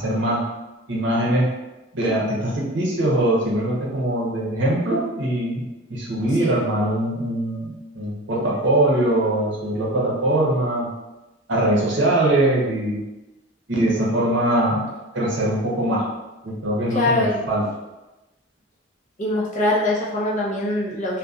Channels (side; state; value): both; normal; correlation 0.33